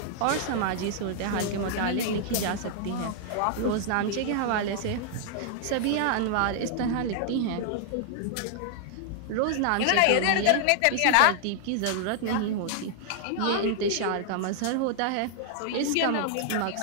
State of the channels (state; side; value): different; both; correlation 0.00